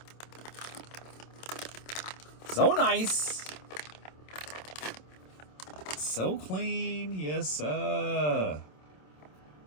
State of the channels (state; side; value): late; right; 27 ms